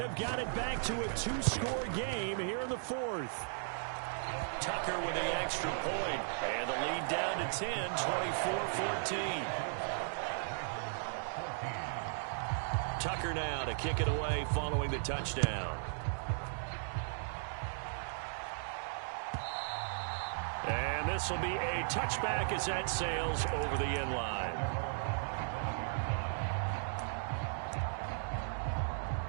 got it back to a 2-score game here in the 4th. Tucker with the extra point. And the lead down to 10, 24-14. Tucker now to kick it away following the touchdown. And this will be a touchback as that sails over the end line.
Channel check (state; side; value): silent; left; digital silence